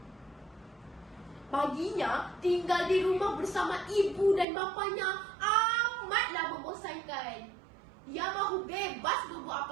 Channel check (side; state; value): left; drops out; at 4.5 s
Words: Baginya, tinggal di rumah bersama ibu dan bapanya amatlah membosankan. Dia mahu bebas berbuat